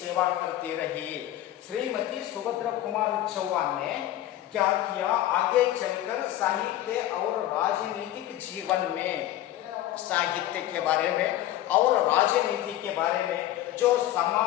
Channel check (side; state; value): right; quieter; 13.7 dB